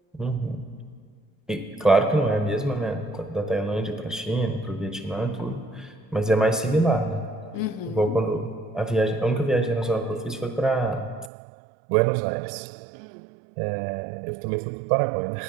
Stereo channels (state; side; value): drops out; left; at 11.3 s